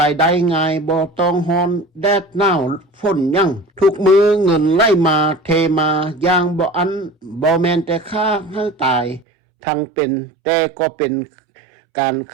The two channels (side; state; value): left; drops out; at 9.2 s